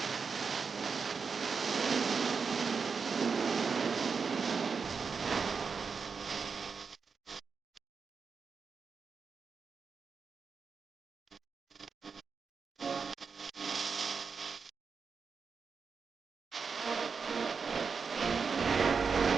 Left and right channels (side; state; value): left; quieter; 5.5 dB